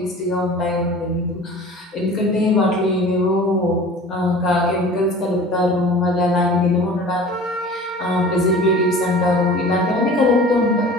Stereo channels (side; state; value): both; normal; correlation 0.42